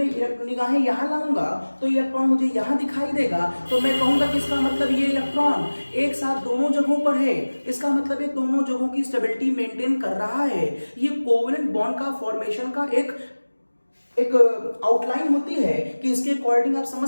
निगाहें यहां लाऊंगा तो ये इलेक्ट्रॉन मुझे यहां दिखाई देगा। तो मैं कहूंगा कि इसका मतलब ये इलेक्ट्रॉन एक साथ दोनों जगहों पर है। इसका मतलब ये दोनों जगहों की स्टेबिलिटी मेंटेन कर रहा है। ये कोवलेंट बॉन्ड का फॉर्मेशन का एक आउटलाइन होती है कि इसके अकॉर्डिंग आप समझ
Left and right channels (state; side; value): inverted; both; correlation -1.00